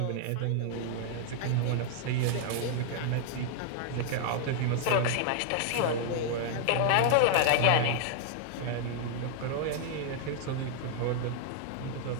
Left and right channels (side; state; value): both; different; correlation 0.00